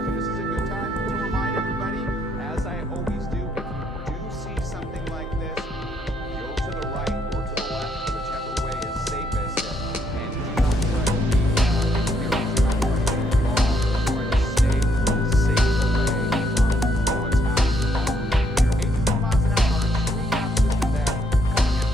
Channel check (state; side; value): normal; both; correlation 0.72